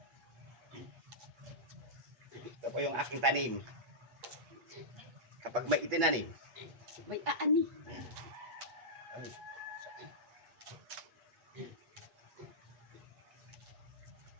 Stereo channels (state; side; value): late; left; 8.2 ms